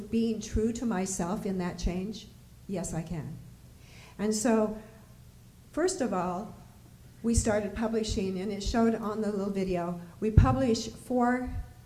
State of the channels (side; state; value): both; identical; correlation 1.00